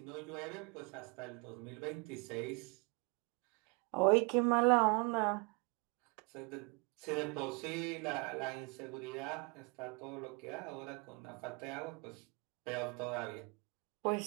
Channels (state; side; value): quieter; left; 30.8 dB